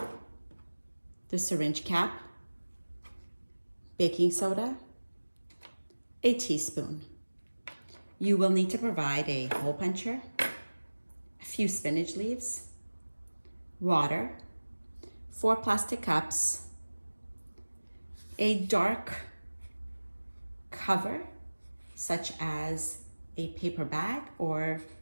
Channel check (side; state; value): both; inverted; correlation -1.00